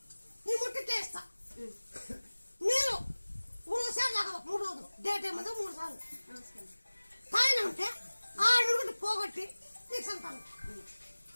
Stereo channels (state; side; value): inverted; both; correlation -1.00